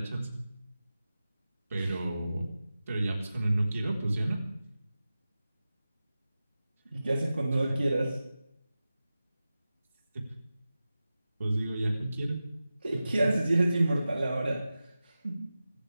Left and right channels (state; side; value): inverted; both; correlation -0.94